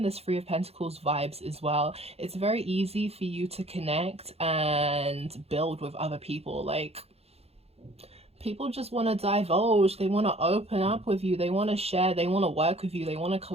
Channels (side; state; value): left; late; 0.29 ms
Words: this Three of Pentacles vibes as well. It's very easy for you to connect and build with other people. Like, people just want to divulge, they want to open up with you, they want to share, they want to work with you, they want to